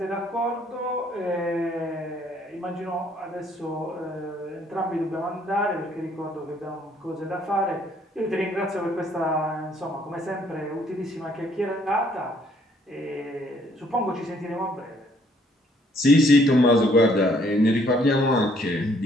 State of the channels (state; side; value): normal; both; correlation 0.65